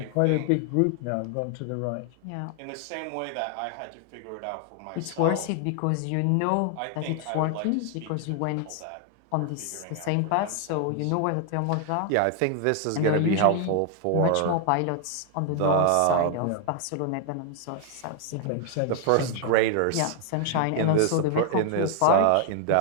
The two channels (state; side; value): different; both; correlation 0.00